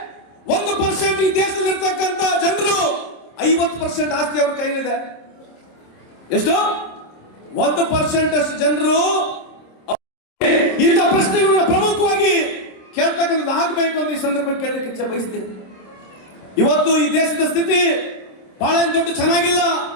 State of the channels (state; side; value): late; right; 26 ms